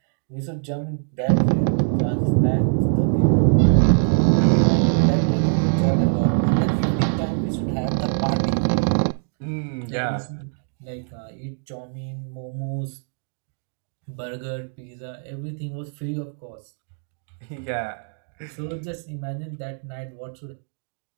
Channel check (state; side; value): silent; left; digital silence